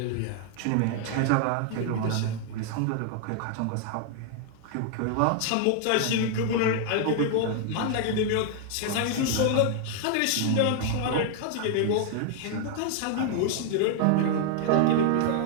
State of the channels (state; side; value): different; both; correlation 0.00